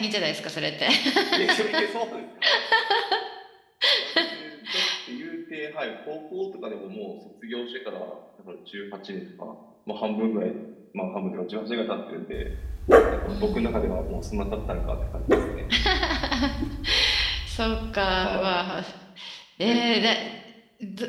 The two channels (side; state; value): both; identical; correlation 1.00